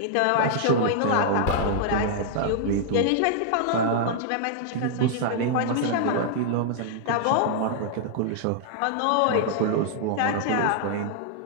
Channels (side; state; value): both; different; correlation -0.01